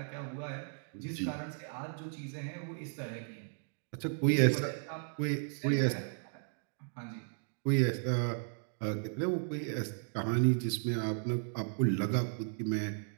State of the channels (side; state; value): left; silent; digital silence